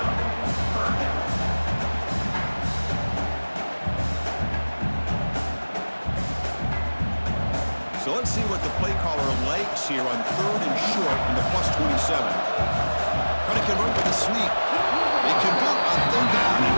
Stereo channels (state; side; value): inverted; both; correlation -1.00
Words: So let's see what the play caller likes here on 3rd and short in the +27. Try to convert with a sneak. They convert on 3rd down and